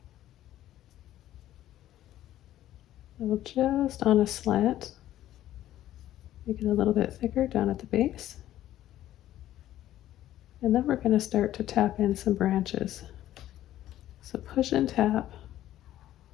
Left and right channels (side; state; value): right; quieter; 13.2 dB